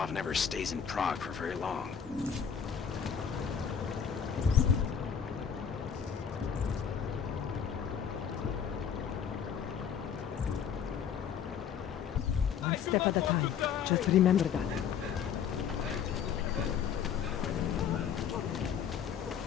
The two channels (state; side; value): quieter; right; 7.8 dB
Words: never stays in Prague for very long. One step at a time. Just remember that.